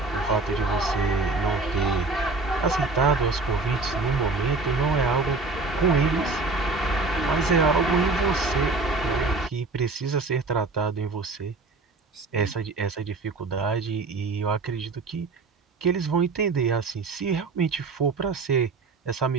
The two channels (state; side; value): quieter; left; 3.7 dB